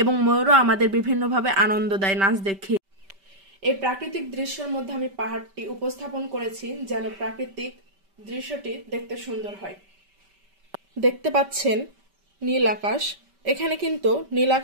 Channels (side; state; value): left; late; 5.1 ms